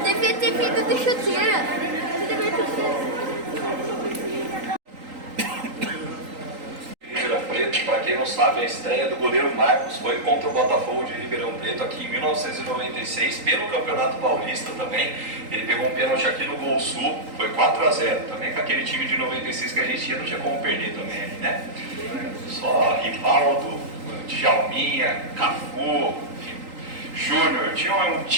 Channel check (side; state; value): left; late; 3.8 ms